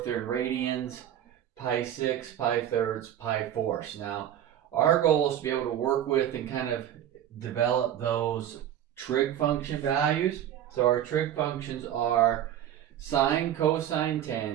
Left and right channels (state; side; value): quieter; left; 10.9 dB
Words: they're in radians, pi 6, pi thirds, pi fourths. Now, our goal is to be able to work with and kind of develop those trig function values. So our trig functions are sine, cosine,